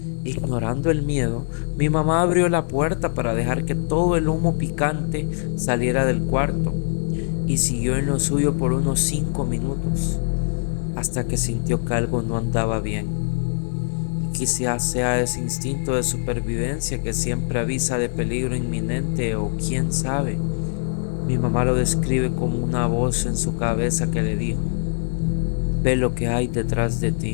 Ignorando el miedo, mi mamá abrió la puerta para dejar que todo el humo picante saliera del cuarto y siguió en lo suyo por unos 5 minutos, hasta que sintió que algo no andaba bien. Quizás sea ese instinto de supervivencia que siempre avisa de peligro inminente o quién sabe. Mi mamá lo describe como una voz en su cabeza que le dijo: ve lo que hay detrás de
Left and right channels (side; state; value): right; silent; digital silence